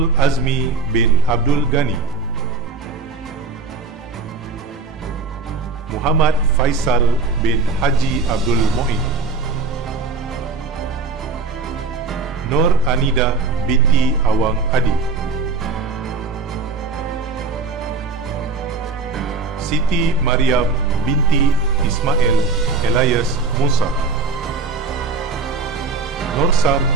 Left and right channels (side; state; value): left; quieter; 4.1 dB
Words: Azmi bin Abdul Ghani. Muhammad Faisal bin Haji Abdul Mu'in. Nur Anida binti Awang Adi. Siti Mariam binti Ismail Elias Musa. Nursan